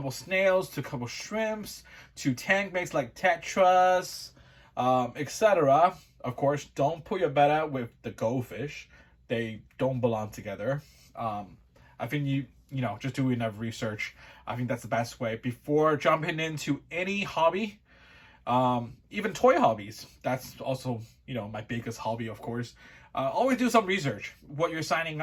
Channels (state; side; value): identical; both; correlation 1.00